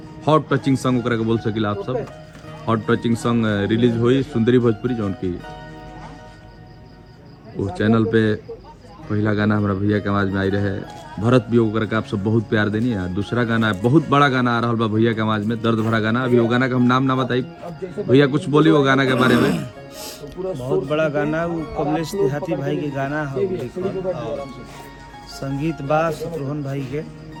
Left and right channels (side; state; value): both; identical; correlation 1.00